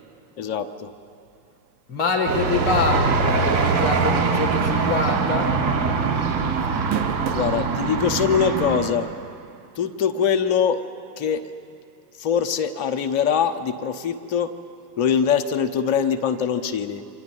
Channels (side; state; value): right; late; 2.9 ms